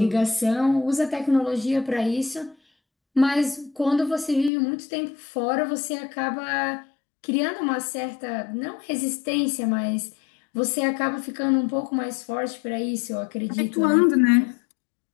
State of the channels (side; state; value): right; drops out; at 4.5 s